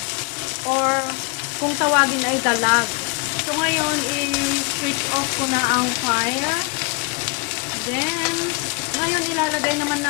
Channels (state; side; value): quieter; right; 30.7 dB